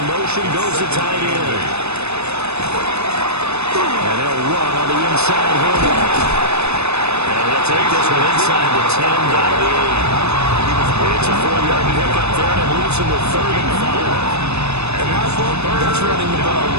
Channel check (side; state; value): left; late; 0.80 ms